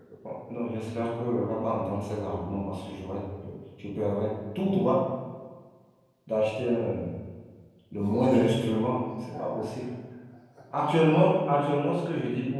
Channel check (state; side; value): identical; both; correlation 1.00